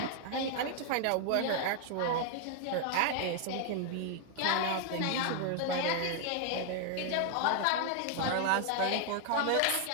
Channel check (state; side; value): different; both; correlation 0.00